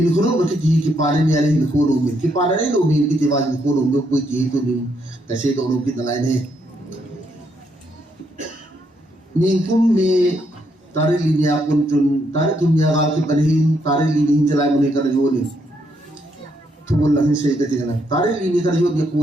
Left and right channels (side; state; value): both; normal; correlation 0.75